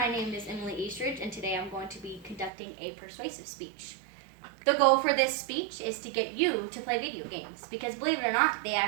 name is Emily Eastridge and today I'm going to be conducting a persuasive speech. The goal for this speech is to get you to play video games because believe it or not, they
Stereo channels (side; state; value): left; drops out; at 2.5 s